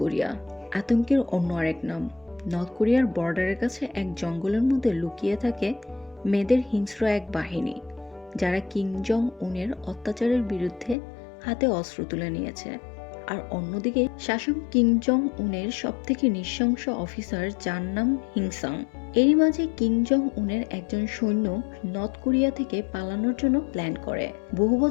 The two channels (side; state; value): right; drops out; at 11.0 s